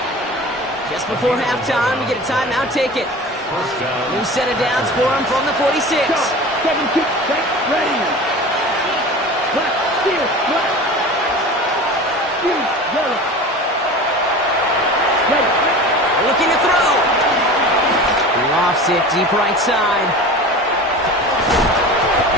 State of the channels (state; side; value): normal; both; correlation 0.35